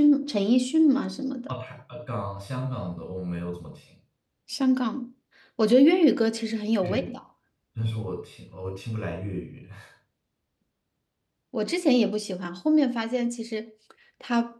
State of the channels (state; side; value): identical; both; correlation 1.00